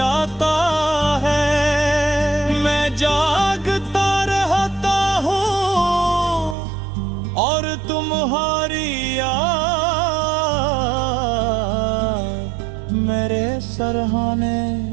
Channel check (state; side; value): drops out; left; at 6.6 s